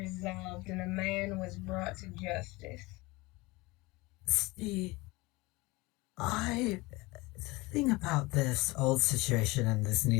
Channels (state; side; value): quieter; right; 22.7 dB